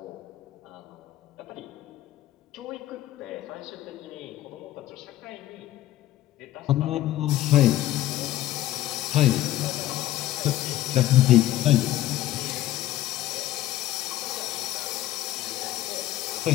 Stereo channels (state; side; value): quieter; right; 14.4 dB